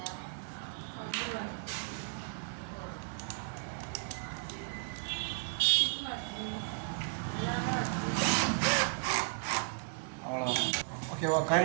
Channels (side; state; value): left; silent; 55 dB below the other